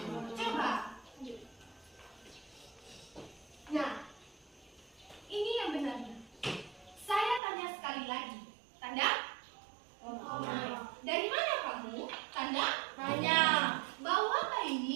coba. Nah, ini yang benarnya. Saya tanya sekali lagi. Tanda? Dari mana kamu? Tanda? Tanya. Bau apa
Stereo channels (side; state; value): left; drops out; at 7.4 s